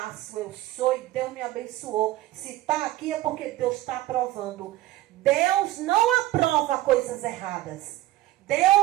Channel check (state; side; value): quieter; left; 15.6 dB